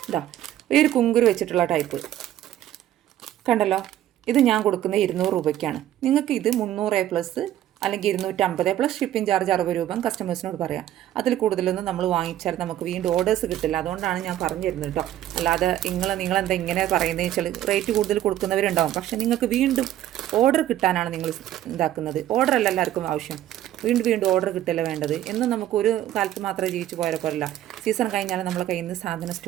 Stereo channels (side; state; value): left; quieter; 12.5 dB